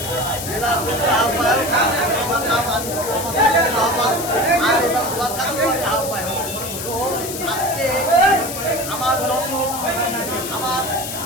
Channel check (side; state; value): left; noise; hiss, 7 dB below the sound